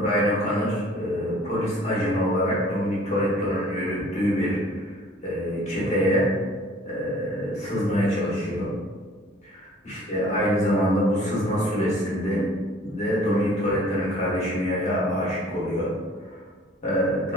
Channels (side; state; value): both; normal; correlation 0.52